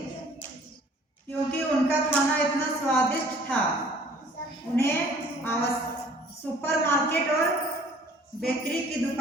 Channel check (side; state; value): both; normal; correlation 0.54